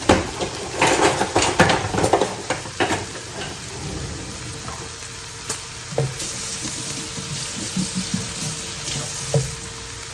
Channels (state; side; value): identical; both; correlation 1.00